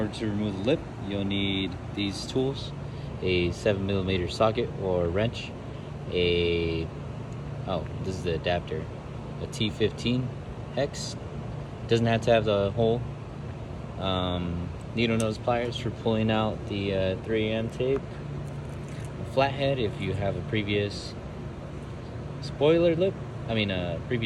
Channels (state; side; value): identical; both; correlation 1.00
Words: to remove the lip, you'll need these tools. A 7mm socket or wrench. This is the adapter. A T15 hex. Doesn't have to have the hole. Needle nose pliers for pulling out the 3M tape. A flathead if you have a previous